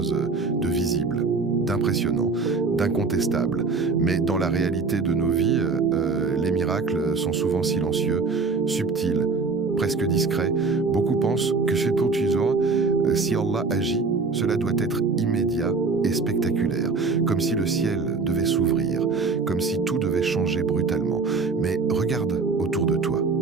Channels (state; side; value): quieter; left; 4.3 dB